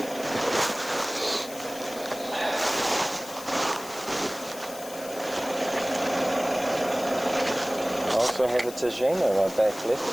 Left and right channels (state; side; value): noise; left; hiss, 14 dB below the sound